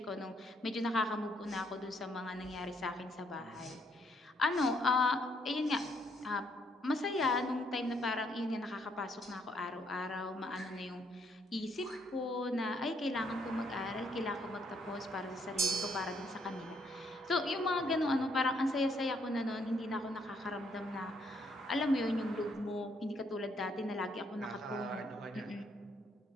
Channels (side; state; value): both; normal; correlation 0.70